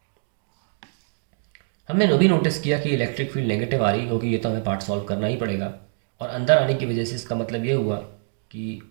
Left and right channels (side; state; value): left; silent; digital silence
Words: हमने वो भी नोटिस किया कि इलेक्ट्रिक फील्ड नेगेटिव आ रही, क्योंकि ये तो हमें पार्ट सॉल्व करना ही पड़ेगा। और अंदर आने की वजह से इसका मतलब ये हुआ कि